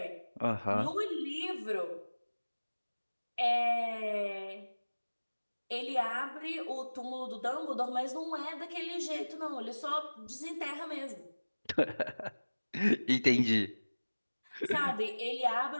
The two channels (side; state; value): both; inverted; correlation -1.00